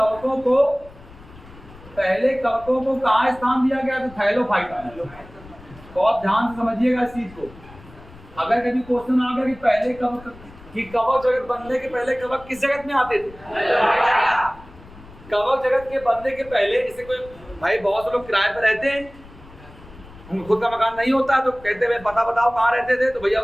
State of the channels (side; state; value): left; noise; rumble, 20 dB below the sound